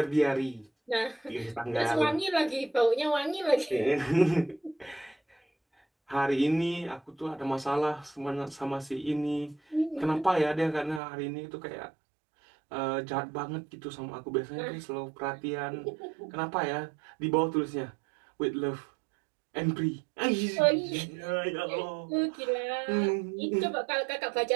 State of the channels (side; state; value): left; drops out; at 11.0 s